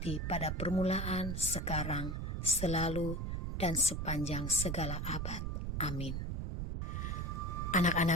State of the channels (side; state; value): right; noise; rumble, 2 dB below the sound